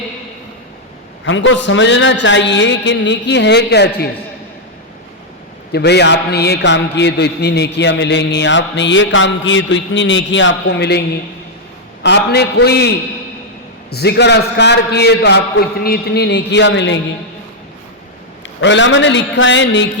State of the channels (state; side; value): normal; both; correlation -0.03